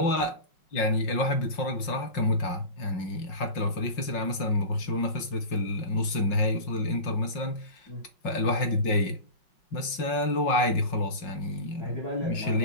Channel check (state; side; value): late; right; 5.6 ms